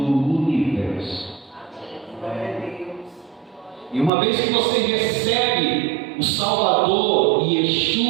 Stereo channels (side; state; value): left; drops out; at 4.1 s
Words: universo. E uma vez que você recebe o Salvador e